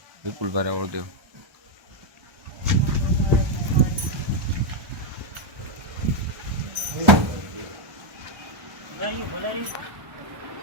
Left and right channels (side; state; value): left; late; 1.1 ms